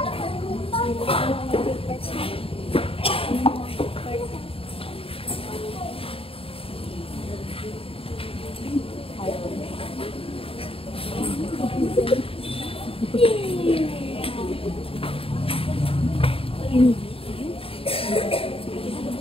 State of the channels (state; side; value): late; right; 0.27 ms